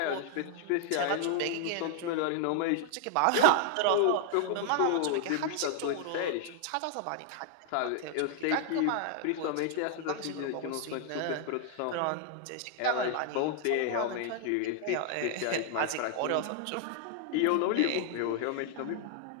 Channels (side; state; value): both; different; correlation -0.01